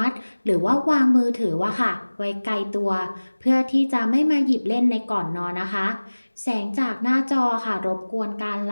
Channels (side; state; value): both; inverted; correlation -1.00